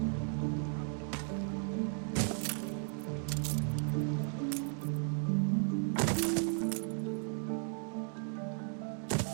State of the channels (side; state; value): left; silent; 54 dB below the other